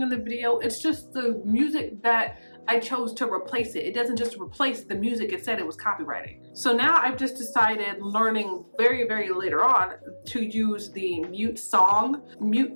in the video, it's just the music that I chose to replace it. It doesn't just replace the music it said it was copywriting. So now I've just decided, learning very, very later on, to use the mute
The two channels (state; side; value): inverted; both; correlation -1.00